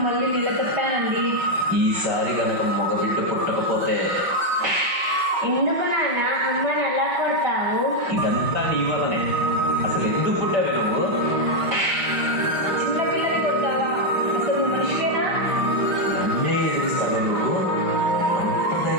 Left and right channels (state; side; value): late; left; 5.1 ms